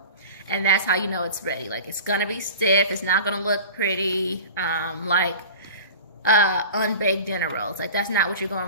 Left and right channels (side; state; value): both; inverted; correlation -0.37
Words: And that's how you know it's ready. Like, it's gonna be stiff. It's not gonna look pretty, like unbaked dinner rolls. Like, that's not what you're